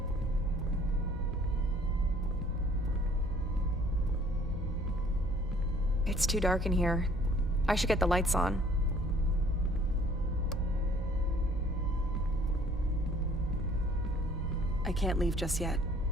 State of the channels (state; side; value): normal; both; correlation 0.57